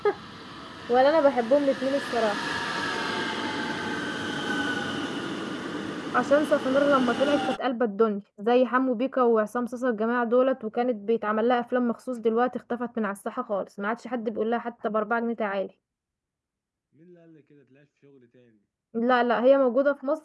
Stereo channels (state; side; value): identical; both; correlation 1.00